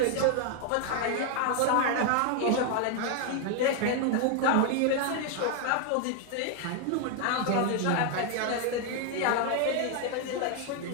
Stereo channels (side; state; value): both; different; correlation 0.00